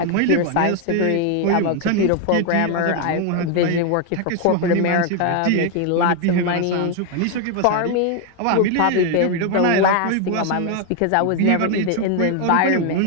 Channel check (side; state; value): both; different; correlation 0.01